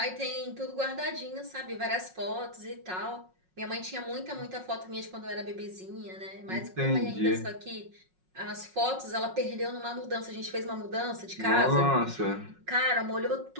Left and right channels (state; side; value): late; left; 5.5 ms